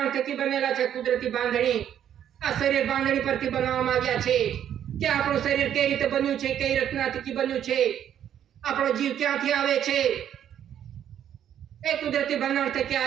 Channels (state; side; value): quieter; left; 10.0 dB